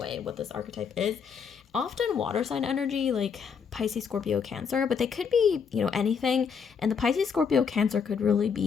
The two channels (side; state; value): right; quieter; 6.5 dB